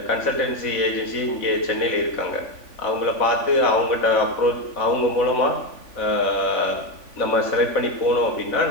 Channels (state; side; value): late; right; 3.5 ms